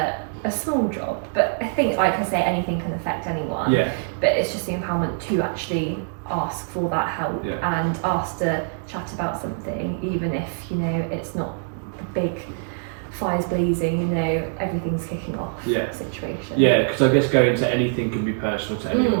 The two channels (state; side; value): silent; left; digital silence